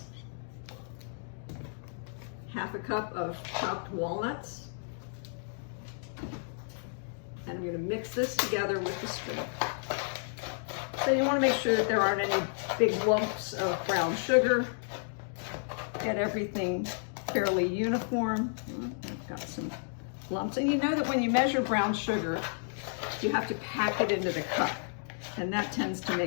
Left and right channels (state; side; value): silent; right; digital silence